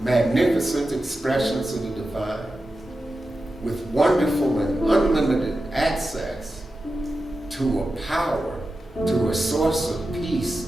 magnificent expressions of the divine with wonderful and unlimited access to a power, to a source of peace,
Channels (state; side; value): normal; both; correlation 0.92